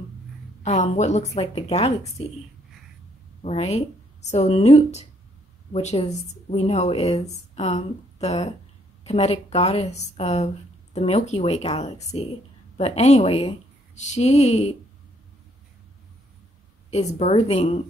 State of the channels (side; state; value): both; normal; correlation 0.68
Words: what looks like the galaxy, right? So Nut, which we know is the Kemetic goddess of the Milky Way galaxy. But anyway, she is birthing